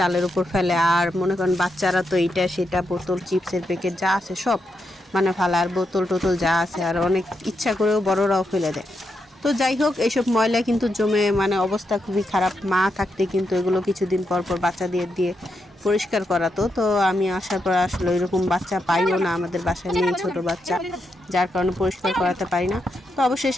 উপর ফেলে। আর মনে করেন বাচ্চারা তো এইটা সেটা বোতল, চিপসের প্যাকেট যা আছে সব মানে ফালা, আর বোতল টোতল যা আছে, আর অনেক ইচ্ছা করেও বড়রাও ফেলে দেয়। তো যাই হোক, এইসব ময়লা কিন্তু জমে মানে অবস্থা খুবই খারাপ। মা থাকতে কিন্তু এগুলো কিছুদিন পর পর বাচ্চা দিয়ে দিয়ে পরিষ্কার করাতো। তো আমি আসার পর আসলে এরকম বাচ্চা পাইও না, আমাদের বাসায় নেই ছোট বাচ্চা, যার কারণে পরিষ্কার করাতে পারি না। তো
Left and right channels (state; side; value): normal; both; correlation 0.83